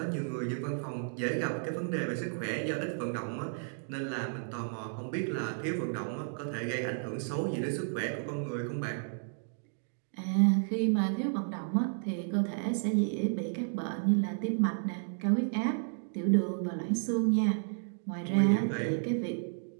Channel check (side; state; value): left; silent; digital silence